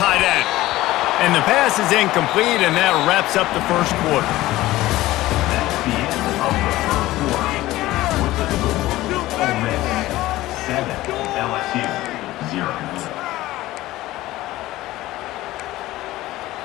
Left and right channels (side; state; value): right; quieter; 16.9 dB